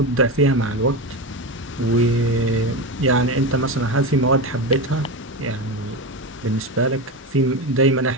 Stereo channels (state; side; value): normal; both; correlation 0.18